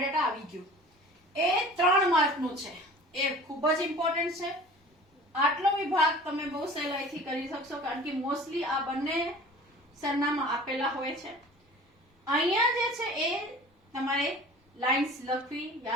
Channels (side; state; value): both; normal; correlation 0.42